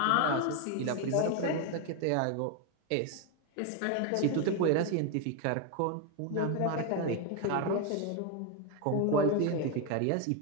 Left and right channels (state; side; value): different; both; correlation 0.01